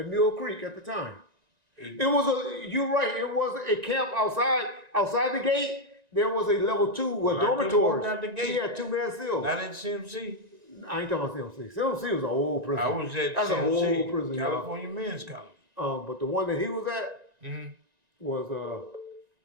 Mill Creek at the time. You're right. It was a camp outside the gate. There was a level 2 with I couldn't dormitories. walk out the gate. He had 2-man cells. Not in CMC. I ain't talking about CMC. CMC was an old prison. I was at That's an old CMC, prison, y'all. California Men's Colony. But the one that he was at Mm-hmm. was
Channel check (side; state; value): left; late; 1.9 ms